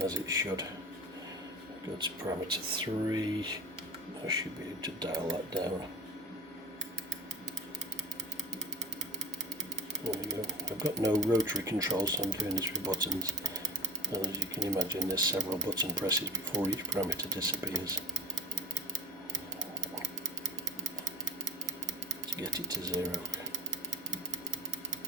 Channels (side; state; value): right; noise; hum, 28 dB below the sound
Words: as it should. Go to parameter 3, I should be able to dial that down. There we go. I've got no rotary control, so I'm doing this with buttons. And as you can imagine, there's several button presses before each parameter disappears to get it to 0.